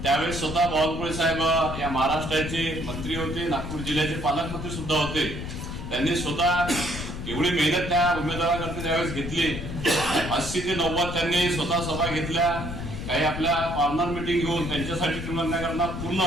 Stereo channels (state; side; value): noise; left; rumble, 7 dB below the sound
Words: त्यावेळेस स्वतः बावनकुळे साहेब या महाराष्ट्राचे मंत्री होते, नागपूर जिल्ह्याचे पालकमंत्री सुद्धा होते। त्यांनी स्वतः एवढी मेहनत त्या उमेदवाराकरता त्यावेळेस घेतली। 80 ते 90 त्यांनी स्वतः सभा घेतल्या, काही आपल्या कॉर्नर मीटिंग घेऊन त्यांच्यासाठी करता